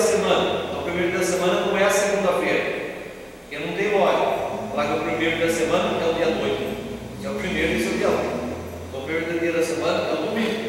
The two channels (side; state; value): both; identical; correlation 1.00